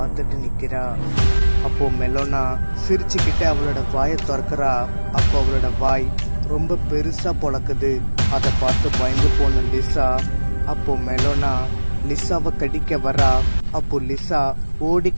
நிக்கிறா. அப்போ மெலோனா சிரிச்சுக்கிட்டு அவளோட வாயை திறக்கிறா. அப்போ அவளோட வாய் ரொம்ப பெருசா பொளக்குது. அதை பார்த்து பயந்து போன லிசா அப்போ மெலோனா லிசாவை கடிக்க வரா. அப்போ லிசா ஓடி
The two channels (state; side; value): inverted; both; correlation -1.00